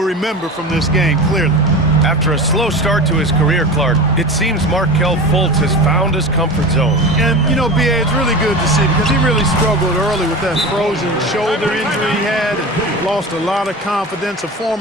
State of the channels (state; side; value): normal; both; correlation 0.30